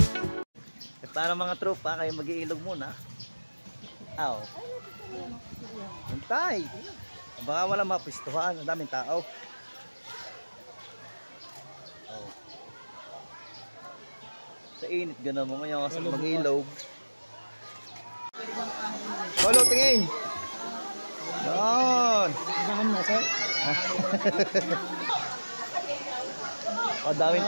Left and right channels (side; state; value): both; inverted; correlation -1.00